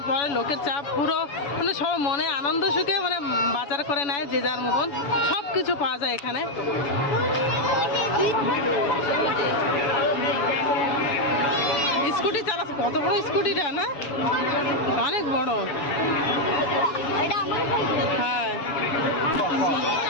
পরে লোকের চাপ পুরো, মানে সব মনে আনন্দ সুখে মানে বাজার করে নেয় যে যার মতন, সব কিছু পাওয়া যায় এখানে। স্কুটি চালাচ্ছে, কত বড় স্কুটিটা না, অনেক বড়। হ্যাঁ,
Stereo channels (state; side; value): late; right; 7.1 ms